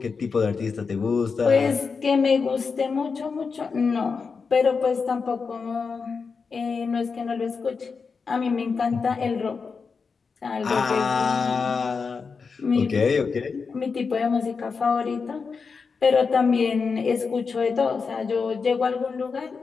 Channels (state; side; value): quieter; right; 5.1 dB